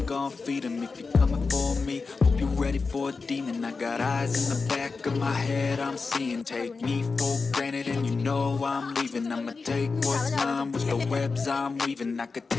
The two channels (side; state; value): right; quieter; 4.4 dB